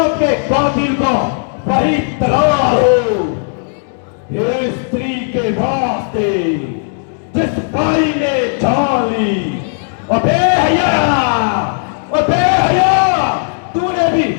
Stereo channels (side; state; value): right; silent; digital silence